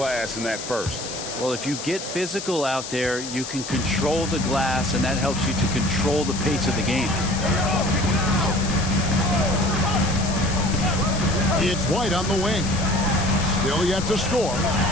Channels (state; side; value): noise; left; hiss, 8 dB below the sound